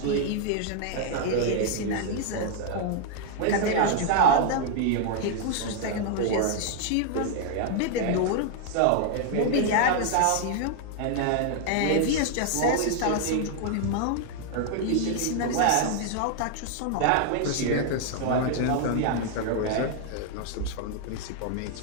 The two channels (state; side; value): different; both; correlation 0.00